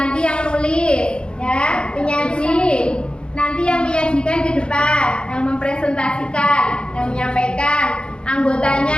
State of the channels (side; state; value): right; late; 0.053 ms